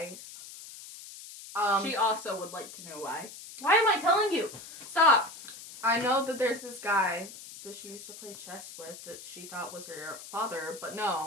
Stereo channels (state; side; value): noise; left; hiss, 14 dB below the sound